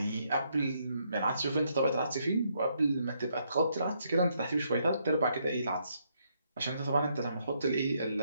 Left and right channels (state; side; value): inverted; both; correlation -0.74